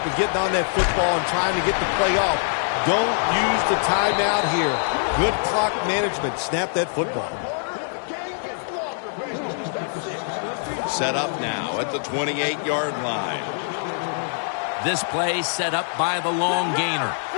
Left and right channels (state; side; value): silent; right; digital silence